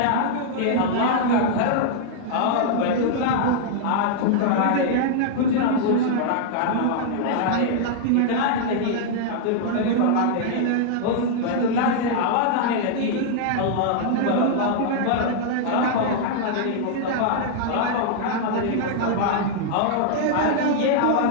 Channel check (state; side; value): different; both; correlation -0.01